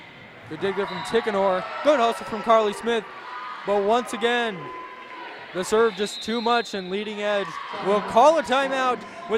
Good dig there from Tickenor. Good hustle from Carly Smith. But once again, the serve just too much, and Leading Edge will call a timeout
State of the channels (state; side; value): identical; both; correlation 1.00